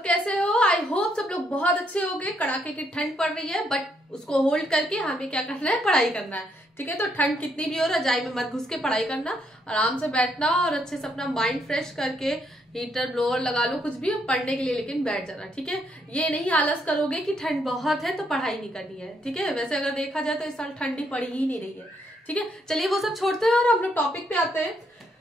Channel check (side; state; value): both; normal; correlation 0.74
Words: कैसे हो। आई होप सब लोग बहुत अच्छे होंगे। कड़ाके की ठंड पड़ रही है बट उसको होल्ड करके हमें क्या करना है, पढ़ाई करना है। ठीक है, तो ठंड कितनी भी हो, रजाई में मत घुस के पढ़ाई करना, आराम से बैठना और अच्छे से अपना माइंड फ्रेश करके हीटर ब्लोअर लगा लो, कुछ भी पढ़ने के लिए, लेकिन बैठ जाना। ठीक है, ये नहीं आलस करोगे कि ठंड बहुत है तो पढ़ाई नहीं करनी है। ठीक है, वैसे अगर देखा जाए तो इस साल ठंडी पड़ी ही नहीं रही है। ठीक है, चलिए वो सब छोड़ते हैं और हम लोग टॉपिक पे आते हैं,